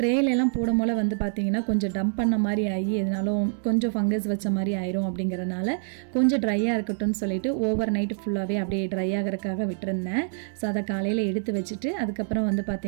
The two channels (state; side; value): silent; left; digital silence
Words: போடும் போல் வந்து பார்த்திங்கன்னா கொஞ்சம் டம்ப் பண்ண மாதிரி ஆகி எதுனாலும் கொஞ்சம் ஃபங்கஸ் வச்ச மாதிரி ஆயிரும் அப்படிங்கிறதுனால கொஞ்சம் ட்ரையாக இருக்கட்டும்னு சொல்லிட்டு ஓவர் நைட்டு ஃபுல்லாகவே அப்படியே ட்ரை ஆகிறதுக்காக விட்டுருந்தேன். ஸோ அதை காலையில் எடுத்து வச்சுட்டு அதுக்கப்புறம் வந்து